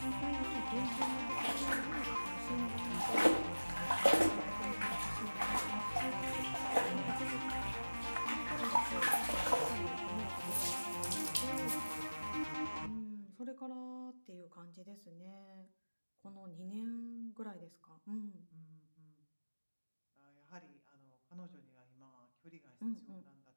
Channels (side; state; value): both; inverted; correlation -1.00